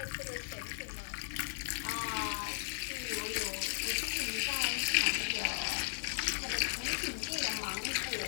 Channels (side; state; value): right; silent; digital silence